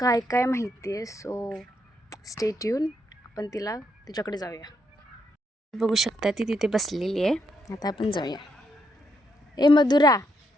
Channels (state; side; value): normal; both; correlation 0.78